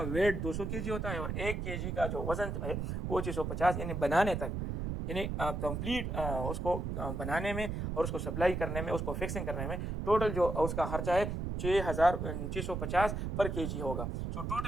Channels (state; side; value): noise; right; rumble, 3 dB below the sound